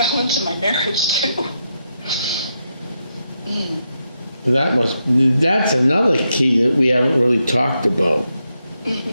my marriage too. That's another key that we haven't really talked about.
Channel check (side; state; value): both; inverted; correlation -0.83